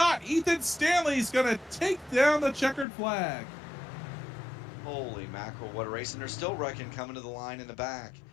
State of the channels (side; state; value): right; drops out; at 2.9 s